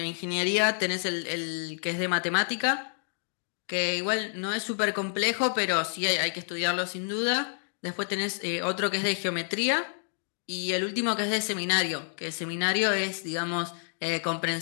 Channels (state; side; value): silent; right; 59 dB below the other